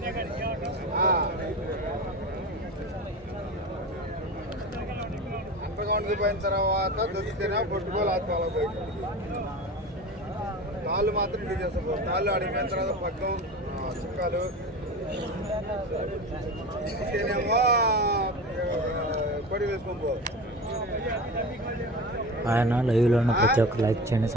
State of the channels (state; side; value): normal; both; correlation 0.30